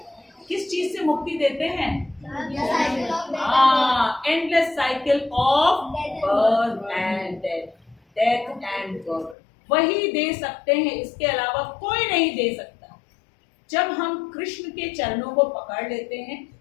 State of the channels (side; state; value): right; drops out; at 9.3 s